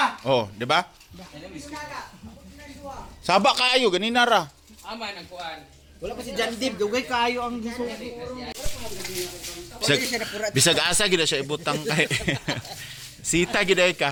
Oh, di ba? Saba kayo, ganina ra. Ama ng kuhan. Wala pa si Jan Dib, dugay kayo ang gisuko. Bisag asa gid siya ibutang kay. Sita gid ay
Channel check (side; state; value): both; identical; correlation 1.00